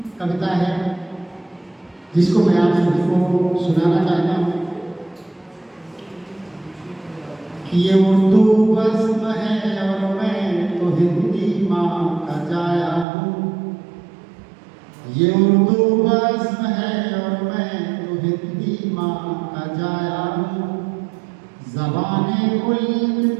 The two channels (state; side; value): drops out; left; at 13.1 s